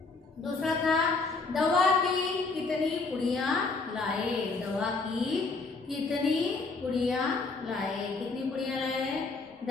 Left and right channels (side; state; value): right; quieter; 3.9 dB